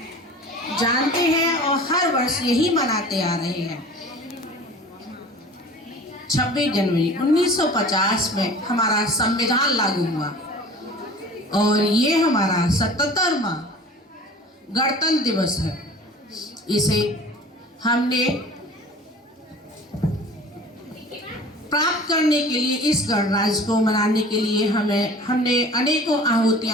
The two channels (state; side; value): normal; both; correlation 0.43